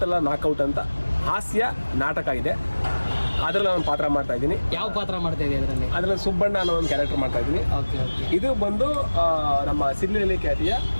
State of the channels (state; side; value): inverted; both; correlation -1.00